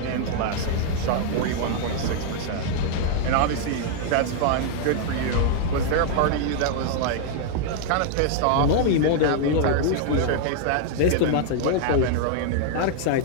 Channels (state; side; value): different; both; correlation -0.01